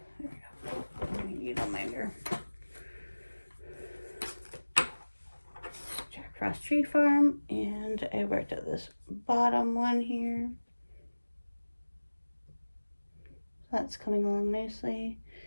There we go. I need a minder. Jack Frost Tree Farm, and I worked at this bottom one here. That's coming along nicely.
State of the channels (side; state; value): both; inverted; correlation -1.00